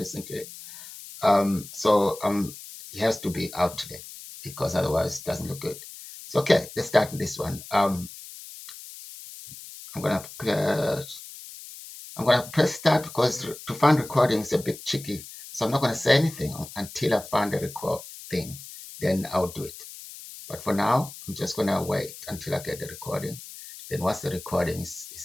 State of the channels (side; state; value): left; noise; hiss, 14 dB below the sound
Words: to it. So it has to be out today because otherwise it doesn't look good. So okay, let's start with this one. I'm gonna press start because to find recording is a bit tricky. So I'm not gonna say anything until I find the record thing. Then I'll do it. But for now, I'm just going to wait until I get the recording. Then once the recording